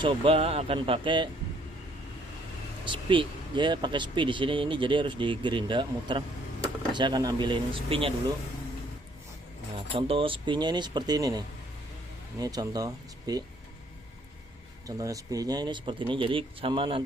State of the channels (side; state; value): both; normal; correlation 0.64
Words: akan pakai spi. Dia pakai spi di sini, ini jadi harus digerinda muter. Saya akan ambilin spinya dulu. Nah, contoh spinya ini seperti ini nih. Ini contoh spi. Contohnya spinya ini seperti ini. Jadi sama